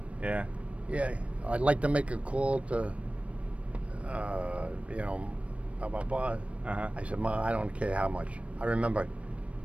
Yeah. Yeah, I'd like to make a call to, blah, blah, blah. I said, Ma, I don't care how much. I remember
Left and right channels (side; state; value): left; late; 0.063 ms